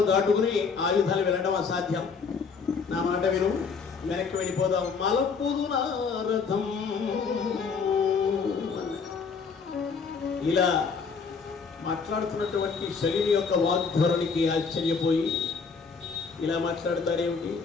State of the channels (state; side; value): quieter; right; 5.4 dB